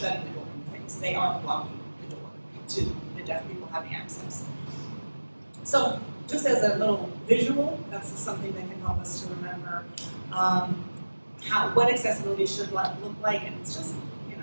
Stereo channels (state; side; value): inverted; both; correlation -1.00